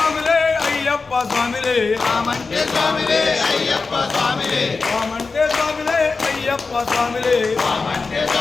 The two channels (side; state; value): right; quieter; 4.3 dB